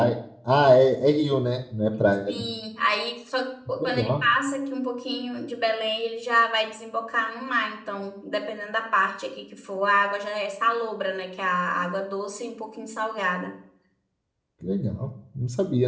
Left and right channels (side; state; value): both; identical; correlation 1.00